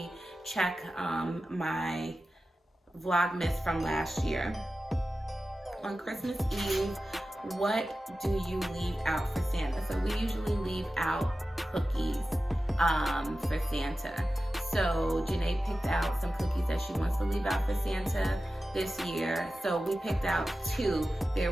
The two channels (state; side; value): normal; both; correlation 0.94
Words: check my Vlogmas from last year. On Christmas Eve, what do you leave out for Santa? So we usually leave out cookies for Santa. So Janae picked out some cookies that she wants to leave out for Santa this year. So we picked out 2. There